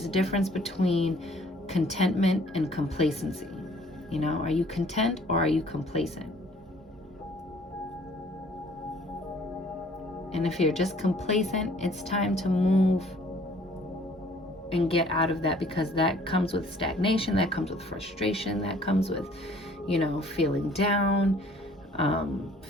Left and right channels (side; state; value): both; normal; correlation 0.56